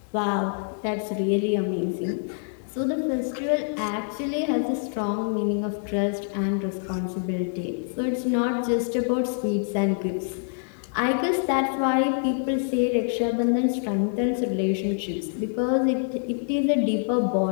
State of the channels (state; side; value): silent; right; digital silence